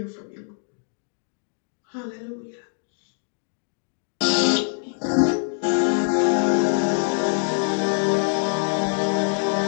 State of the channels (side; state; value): right; silent; 57 dB below the other